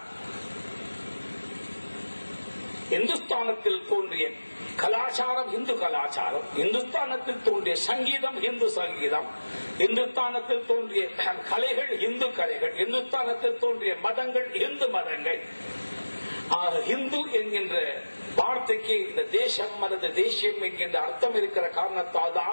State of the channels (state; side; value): inverted; both; correlation -1.00